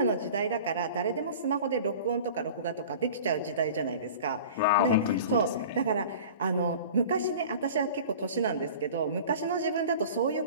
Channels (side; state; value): both; inverted; correlation -0.41